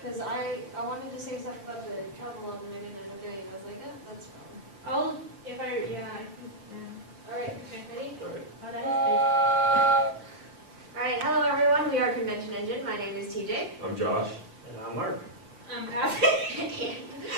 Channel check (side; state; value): left; late; 5.4 ms